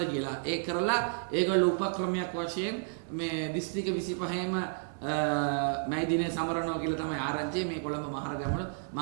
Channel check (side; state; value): left; silent; digital silence